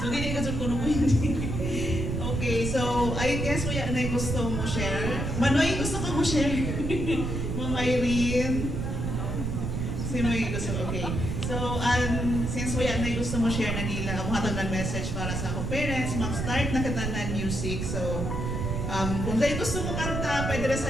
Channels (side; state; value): right; noise; rumble, 2 dB below the sound